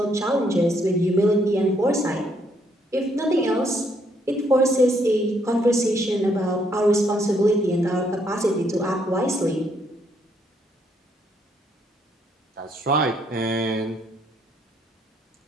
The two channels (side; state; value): both; normal; correlation 0.71